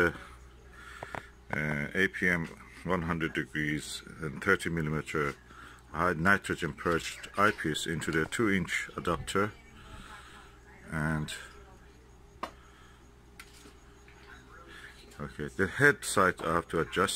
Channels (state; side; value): identical; both; correlation 1.00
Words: APM 100 degrees and 30mm high nitrogen purged eyepiece into the 2-inch adapter. And okay, the head side I have to